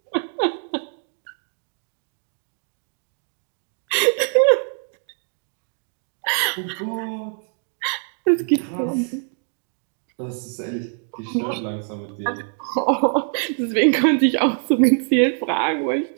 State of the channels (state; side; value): silent; left; 55 dB below the other